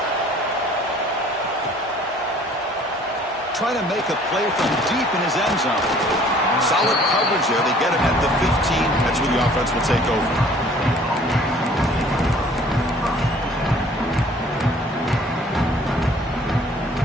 Trying to make a play from deep in his end zone. Solid coverage there. They get him at the 15. That's where the offense will take over.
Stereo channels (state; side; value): normal; both; correlation 0.54